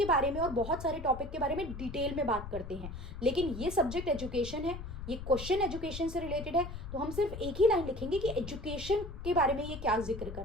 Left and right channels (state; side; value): noise; left; rumble, 9 dB below the sound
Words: बारे में और बहुत सारे टॉपिक के बारे में डिटेल में बात करते हैं। लेकिन ये सब्जेक्ट एजुकेशन है, ये क्वेश्चन एजुकेशन से रिलेटेड है, तो हम सिर्फ एक ही लाइन लिखेंगे कि एजुकेशन के बारे में ये क्या जिक्र कर